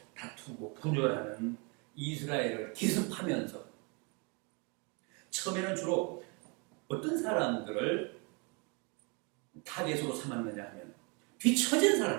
다투고 분열하는 이스라엘을 기습하면서 처음에는 주로 어떤 사람들을 타겟으로 삼았느냐 하면 뒤처진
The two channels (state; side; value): quieter; left; 31.5 dB